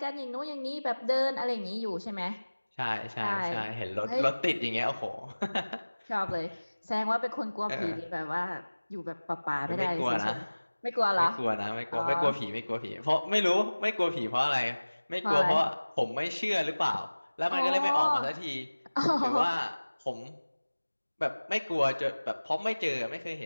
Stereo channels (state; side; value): inverted; both; correlation -1.00